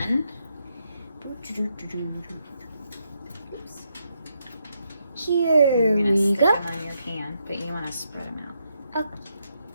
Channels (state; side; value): inverted; both; correlation -0.80